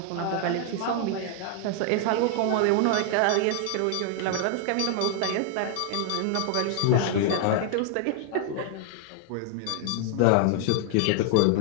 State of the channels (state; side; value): different; both; correlation 0.00